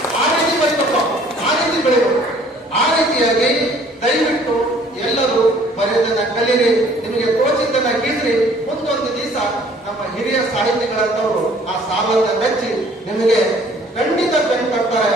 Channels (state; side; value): normal; both; correlation 0.56